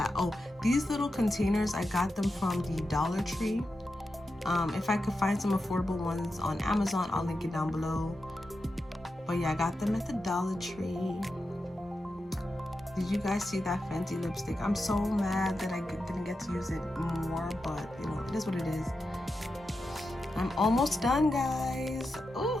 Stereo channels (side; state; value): both; normal; correlation 0.89